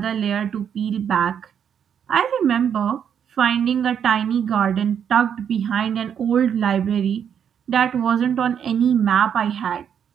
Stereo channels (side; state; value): left; quieter; 8.2 dB